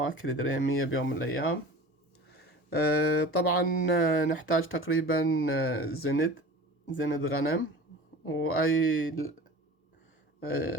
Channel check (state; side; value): normal; both; correlation 0.38